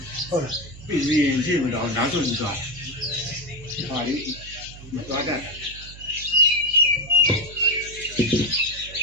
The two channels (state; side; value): noise; right; hum, 16 dB below the sound